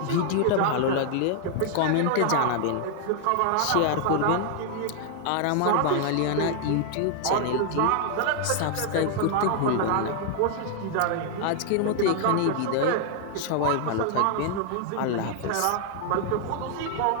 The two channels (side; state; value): both; different; correlation 0.00